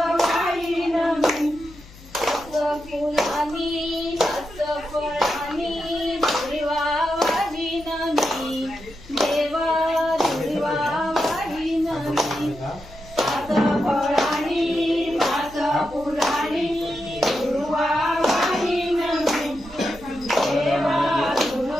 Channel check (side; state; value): left; noise; hum, 21 dB below the sound